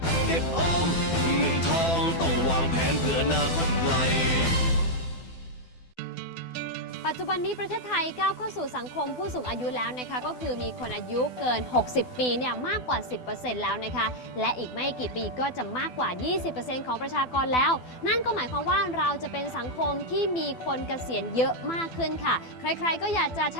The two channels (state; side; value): late; right; 12 ms